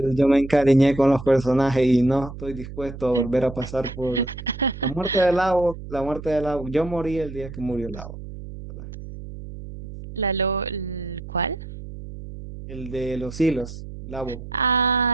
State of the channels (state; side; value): noise; right; hum, 12 dB below the sound